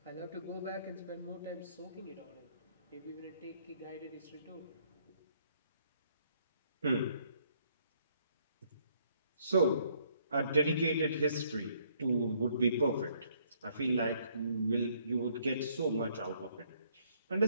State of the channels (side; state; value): both; inverted; correlation -0.67